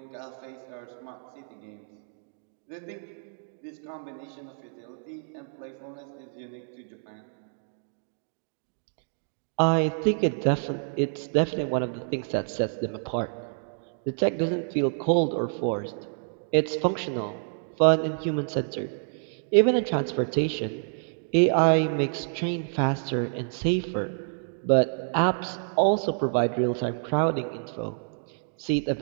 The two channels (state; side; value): silent; left; digital silence